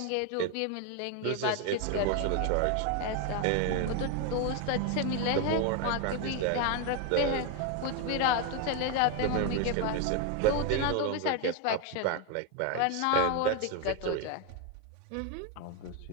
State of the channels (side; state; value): both; different; correlation 0.01